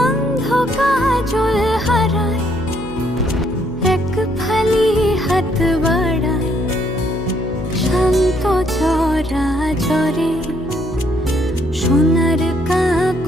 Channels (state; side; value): noise; left; hum, 16 dB below the sound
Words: অন্ধ কাজল হারায় এক ফালি হাত বাড়ায় শান্ত চরা চরে সোনার